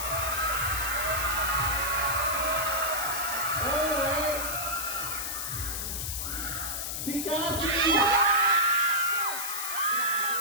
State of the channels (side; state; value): left; noise; hiss, 3 dB below the sound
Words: Alright. Si Cassie.